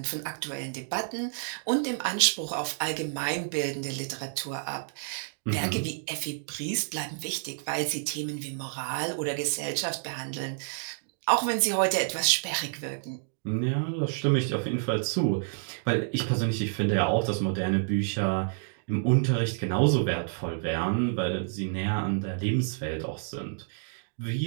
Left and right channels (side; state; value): left; silent; digital silence